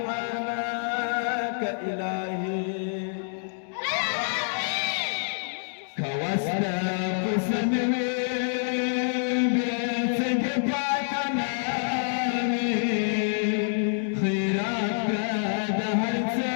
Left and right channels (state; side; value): silent; right; digital silence